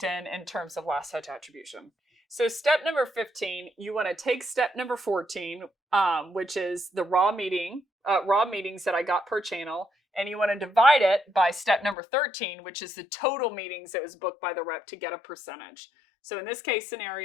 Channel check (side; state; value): right; drops out; at 12.0 s